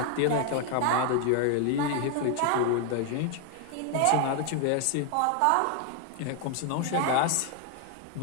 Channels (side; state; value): both; different; correlation 0.00